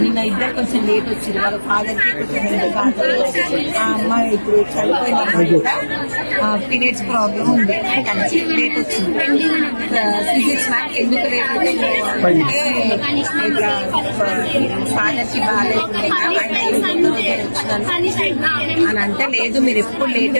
నిన్న ఇద్దరు కొంచెం లేట్ వచ్చింది, వాళ్ళ ఫాదర్ కి కొంచెం ఆ అమ్మాయి ఇప్పుడు చనిపోయిన అమ్మాయి కూడా పీరియడ్స్ ప్రాబ్లం ఉంది, లేట్ వచ్చింది. ఫిజిక్స్ మ్యాథ్ ఎందుకు లేట్ వచ్చింది అంటే ఇట్లా ఫాదర్ కి బాగాలేకుండా అని అంటే, లేదు మీరు ఎప్పుడు లేటే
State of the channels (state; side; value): inverted; both; correlation -1.00